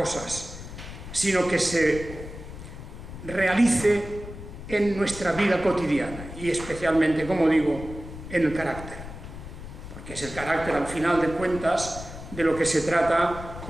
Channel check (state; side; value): noise; left; rumble, 12 dB below the sound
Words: sino que se realice en nuestra vida cotidiana y especialmente, como digo, en el carácter. Que es el carácter, al final de cuentas, de lo que se trata